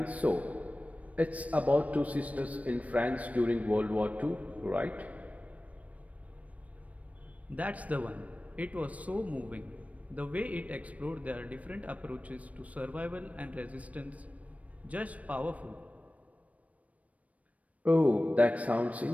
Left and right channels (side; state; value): left; late; 0.068 ms